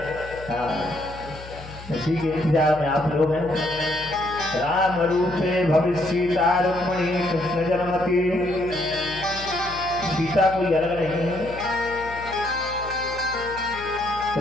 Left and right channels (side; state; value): left; noise; hum, 15 dB below the sound